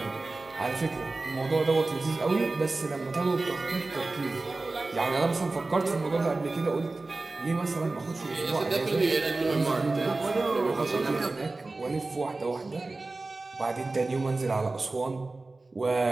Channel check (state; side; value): quieter; left; 3.3 dB